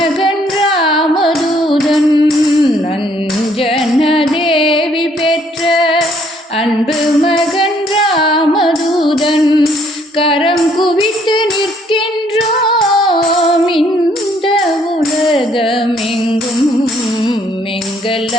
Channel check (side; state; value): both; normal; correlation 0.65